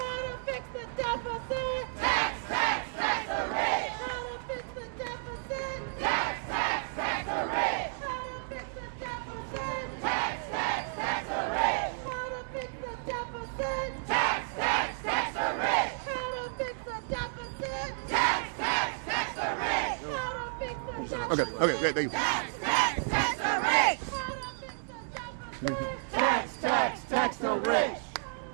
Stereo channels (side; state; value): left; silent; digital silence